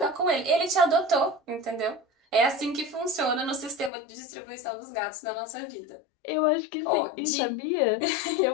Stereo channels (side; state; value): right; drops out; at 3.9 s